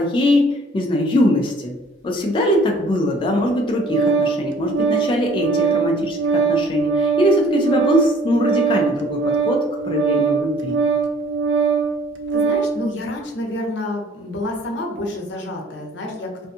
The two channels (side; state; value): both; normal; correlation 0.55